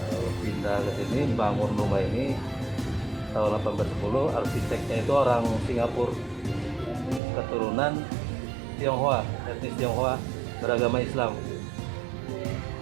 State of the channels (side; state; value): left; drops out; at 7.2 s